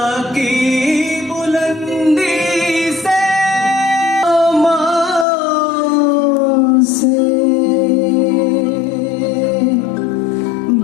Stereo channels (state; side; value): drops out; right; at 5.2 s